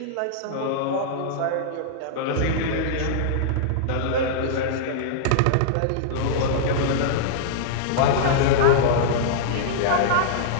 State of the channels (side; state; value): both; different; correlation -0.02